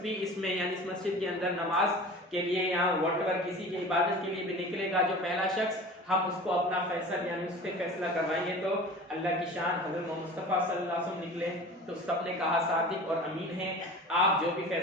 भी इसमें यानी इस मस्जिद के अंदर नमाज के लिए यहाँ व्हाटएवर किसी की इबादत के लिए भी निकलेगा, जो पहला शख्स, हम उसको अपना फैसला यानी उससे फैसला करवाएंगे। तो अल्लाह की शान हज़रत मुस्तफ़ा सल्लल्लाहु अलैहि वसल्लम निकले तो सबने कहा सादिक और अमीन हैं, आप जो भी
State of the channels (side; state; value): both; normal; correlation 0.38